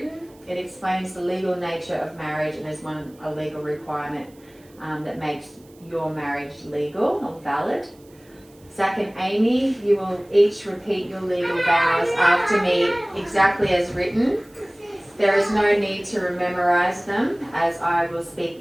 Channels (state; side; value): noise; right; hiss, 29 dB below the sound